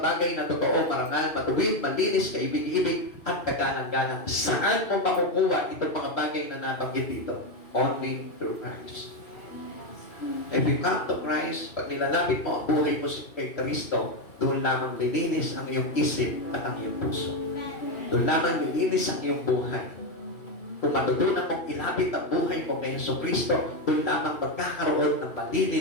bagay na totoo, marangal, matuwid, malinis, kaibig-ibig, at kagalang-galang. Saan mo makukuha itong mga bagay na nabanggit dito? Only through Christ. If you come to Christ, pag nilalapit mo ang buhay mo kay Kristo, doon lamang lilinis ang iyong isip at ang iyong puso. Doon lamang lilinis ang iyong buhay. Kung matutunan mong ilapit ang buhay mo kay Kristo, doon lamang magkakaroon ng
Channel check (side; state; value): right; late; 2.6 ms